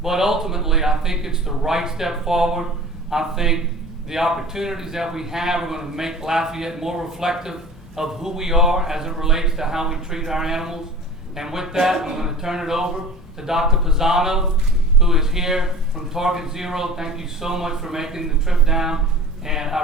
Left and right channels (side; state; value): both; normal; correlation 0.40